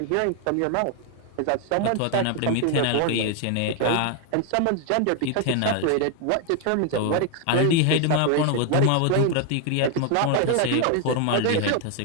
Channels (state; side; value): different; both; correlation 0.01